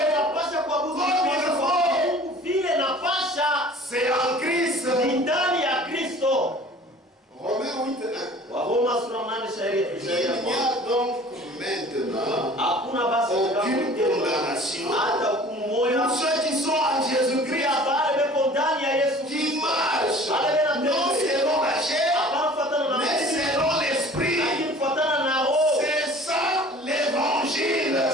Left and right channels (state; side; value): normal; both; correlation 0.47